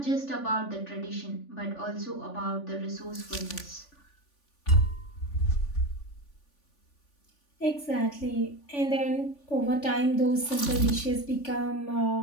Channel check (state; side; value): late; right; 3.5 ms